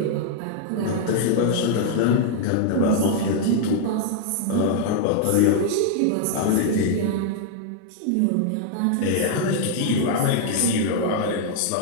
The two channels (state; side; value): different; both; correlation 0.00